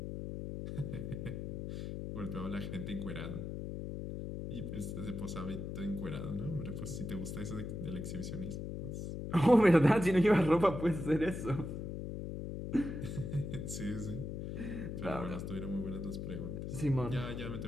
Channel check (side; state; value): left; noise; hum, 5 dB below the sound